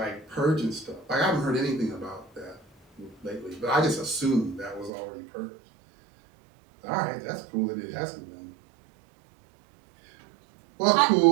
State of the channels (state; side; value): drops out; left; at 4.9 s